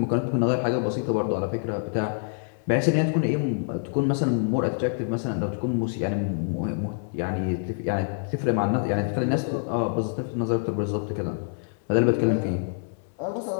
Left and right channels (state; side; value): silent; right; 60 dB below the other